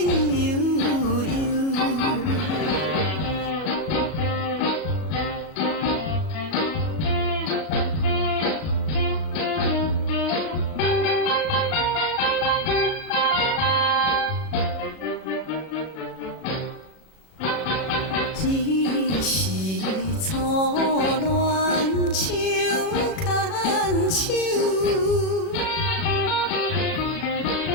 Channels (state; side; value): late; right; 37 ms